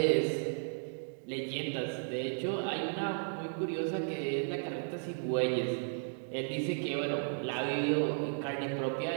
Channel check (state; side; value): silent; left; digital silence